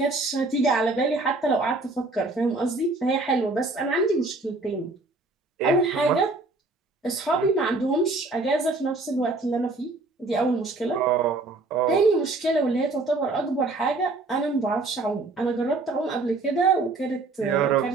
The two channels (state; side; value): quieter; left; 3.3 dB